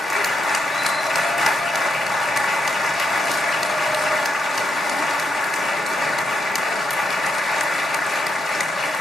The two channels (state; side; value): normal; both; correlation 0.80